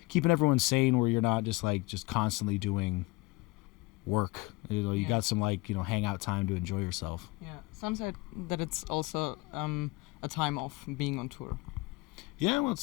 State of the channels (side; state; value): right; quieter; 23.0 dB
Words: keeping everyone sane, where you're not just constantly doing work. You know, you got some, like, you know, hangout time to enjoy yourself. Yeah, some said that it's also a time of being on tour. Yeah, well,